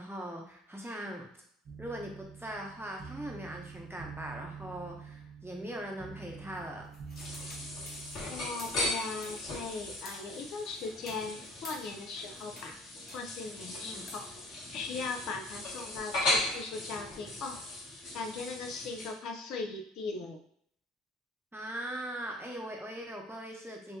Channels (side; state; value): both; normal; correlation 0.51